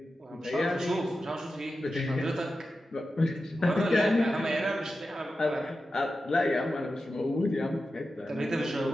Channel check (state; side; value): normal; both; correlation 0.92